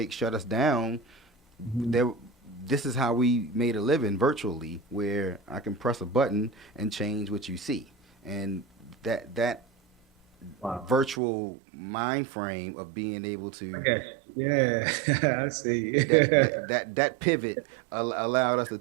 shut us down, Mhm. there this is how we made a living virtually, where I can press a button and change what you see. And that Wow. virtual mind frame of being able I to got you. Yeah, I see. that pivot allowed us to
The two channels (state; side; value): drops out; left; at 11.2 s